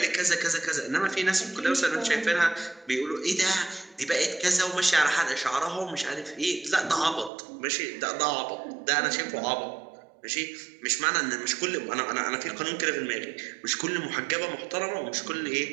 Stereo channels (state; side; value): drops out; left; at 7.3 s